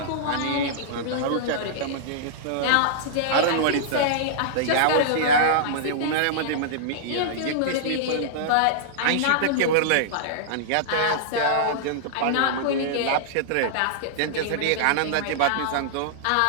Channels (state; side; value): different; both; correlation -0.02